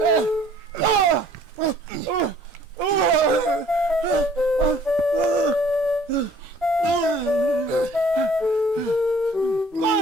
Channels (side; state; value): both; normal; correlation 0.55